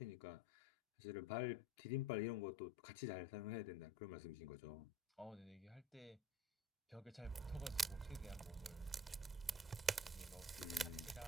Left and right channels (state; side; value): normal; both; correlation 0.48